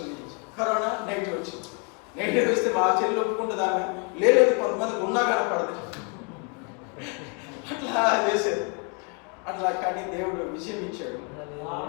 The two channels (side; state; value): right; quieter; 36.2 dB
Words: కరోనా నెగిటివ్ వచ్చింది. నెగిటివ్ వస్తే మా చెల్లి ఒప్పుకుంటుంది. ఆమె లేదు కొంతమంది ఉన్నా కనపడదు అట్లా చేసేది. అట్లా కానీ దేవుడు విజయం ఇచ్చాడు.